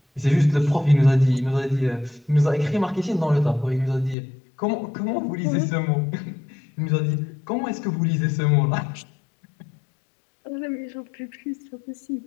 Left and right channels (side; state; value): right; drops out; at 4.2 s